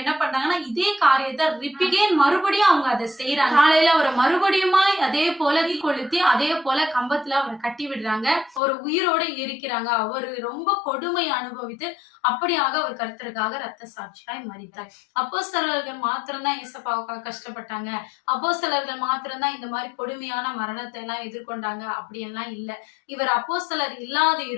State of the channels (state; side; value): drops out; right; at 8.6 s